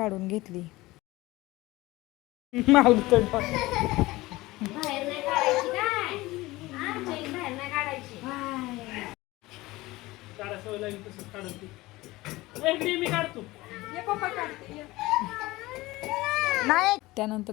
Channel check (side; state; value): right; quieter; 19.6 dB